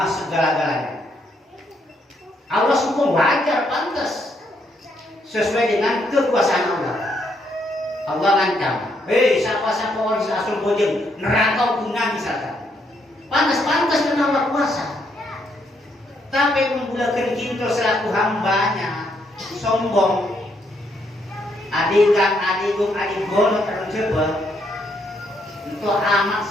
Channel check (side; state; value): both; normal; correlation 0.74